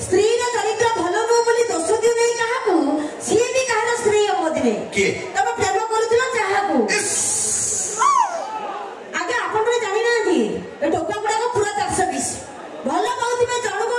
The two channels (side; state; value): both; identical; correlation 1.00